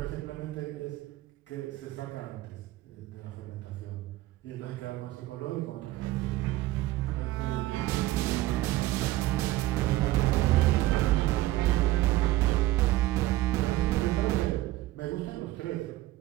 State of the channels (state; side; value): quieter; left; 16.7 dB